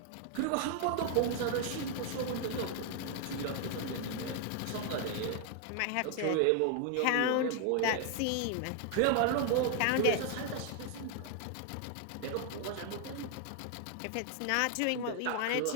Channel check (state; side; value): different; both; correlation 0.00